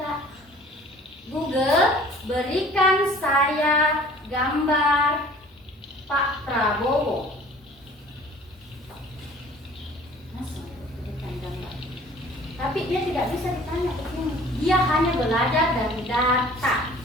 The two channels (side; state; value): both; normal; correlation 0.50